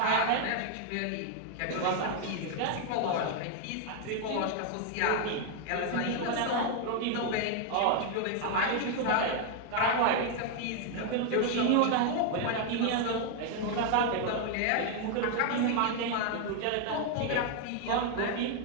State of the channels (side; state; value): both; different; correlation 0.00